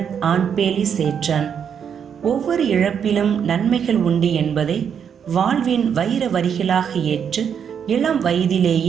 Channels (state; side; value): quieter; left; 7.7 dB